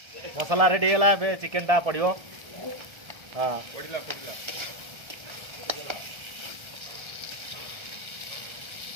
ମସଲା ରେଡ଼ି ହେଇଗଲା। ଏବେ ଚିକେନଟା ପଡ଼ିବ। ହଁ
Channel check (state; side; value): late; left; 1.3 ms